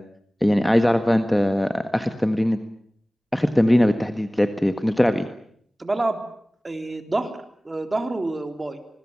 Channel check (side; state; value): both; normal; correlation 0.98